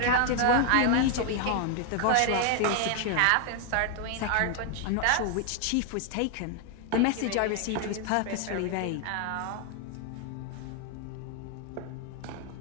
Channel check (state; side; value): different; both; correlation 0.00